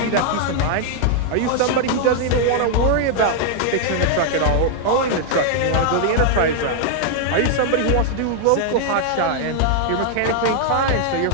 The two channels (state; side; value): different; both; correlation 0.00